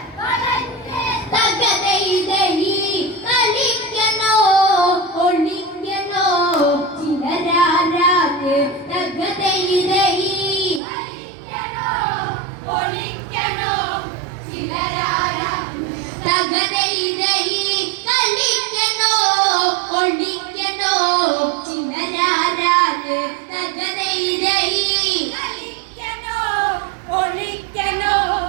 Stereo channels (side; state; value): left; drops out; at 10.8 s